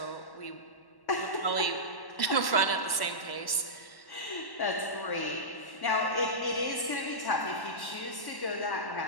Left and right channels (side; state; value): right; late; 1.1 ms